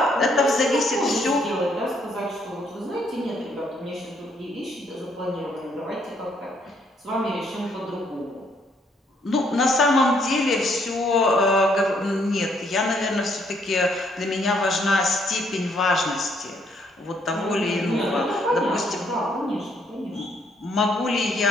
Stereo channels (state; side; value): normal; both; correlation 0.69